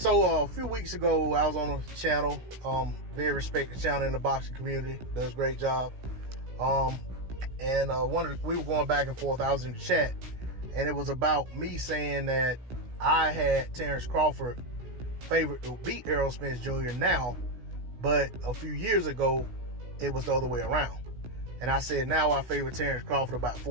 a few weeks ago, I was on a channel, very respected channel in the boxing community, does a great job. We were going back and forth. I was in the chat, and it was about me saying that I had Terence Crawford favored to beat Errol Spence Jr. now, but a few years ago, it was the other way around. And I said now I favor Terence Crawford about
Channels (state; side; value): late; left; 16 ms